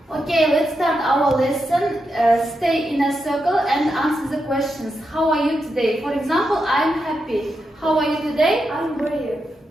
Okay, let's start our lesson. Stay in a circle and answer the questions. How are you today? For example, I'm happy. How are you today? I'm brave.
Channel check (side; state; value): both; normal; correlation 0.85